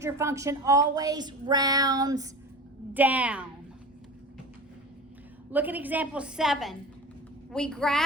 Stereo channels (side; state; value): both; normal; correlation 0.33